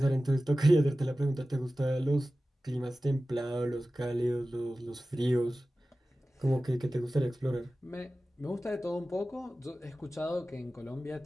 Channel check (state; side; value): normal; both; correlation 0.96